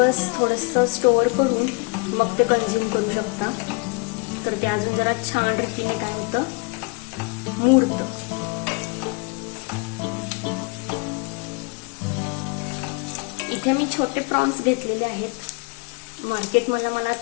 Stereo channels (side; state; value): right; quieter; 31.1 dB